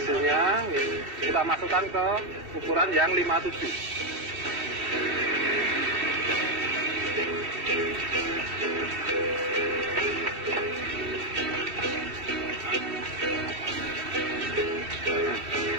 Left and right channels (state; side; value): late; left; 2.7 ms